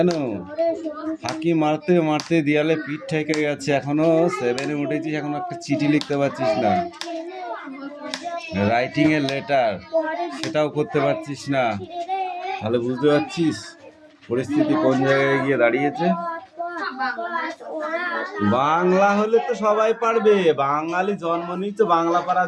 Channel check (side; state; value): both; identical; correlation 1.00